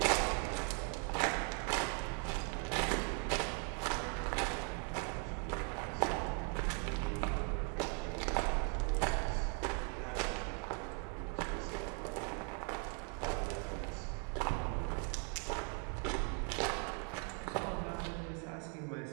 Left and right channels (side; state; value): left; quieter; 39.8 dB